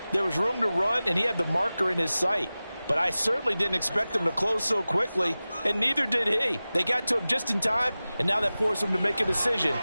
there was room to run and he had the marker in his sight. But I certainly didn't expect him to close so quickly, and neither did he. They got to him just in time, and now that forced him to make a decision.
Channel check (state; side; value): inverted; both; correlation -0.97